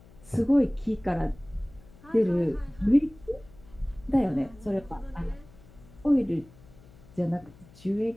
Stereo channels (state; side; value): noise; left; hum, 23 dB below the sound